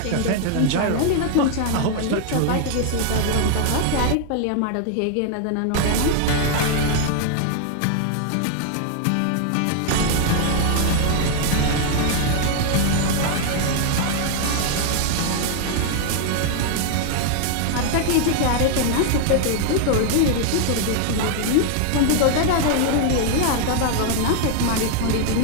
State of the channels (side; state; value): both; different; correlation 0.00